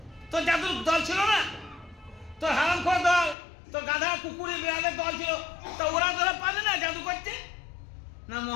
তোর জাদুর দল ছিল না? তোর হারামখোর দল, তোর গাধা কুকুরে বিড়ালের দল ছিল, তা ওরা পারলে না জাদু করতে? না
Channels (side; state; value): right; drops out; at 3.4 s